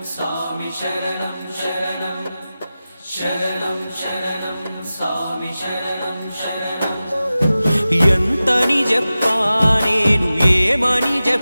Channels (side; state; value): both; inverted; correlation -0.95